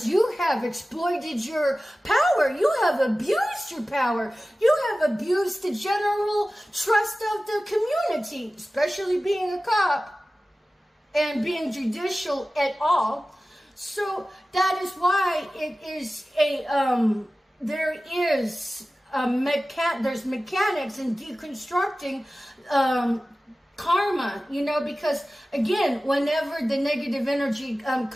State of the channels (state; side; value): normal; both; correlation 0.96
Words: you have exploited your power. You have abused your power. You have abused the general trust of the community, especially being a cop and being judicial at all. So that is why it is there's mechanics in deconstructing karma, because again, whenever the negative energy